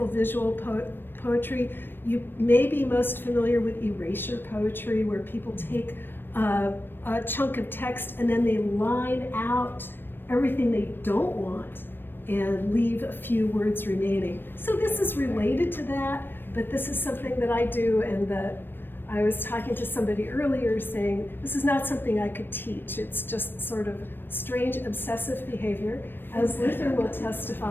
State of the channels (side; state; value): right; late; 0.097 ms